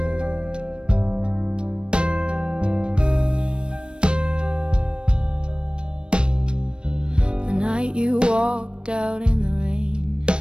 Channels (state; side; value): late; left; 0.056 ms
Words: The night you walked out in the rain,